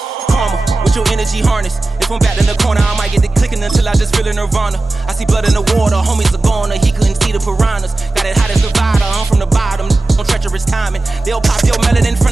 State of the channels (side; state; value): left; quieter; 3.0 dB